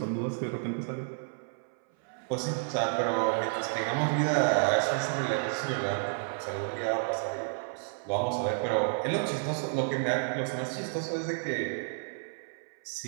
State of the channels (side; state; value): left; silent; 57 dB below the other